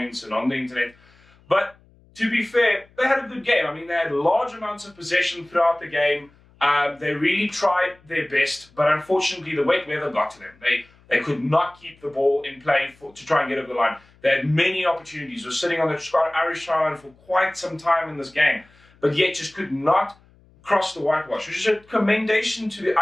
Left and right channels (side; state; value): left; noise; hum, 30 dB below the sound